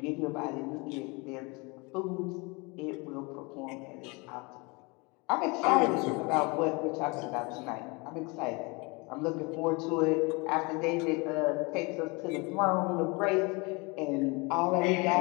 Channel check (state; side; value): quieter; right; 27.9 dB